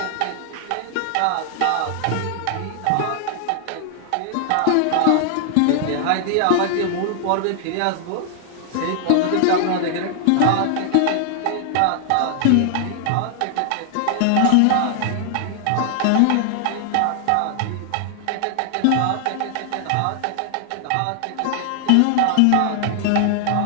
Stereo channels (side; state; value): both; different; correlation 0.00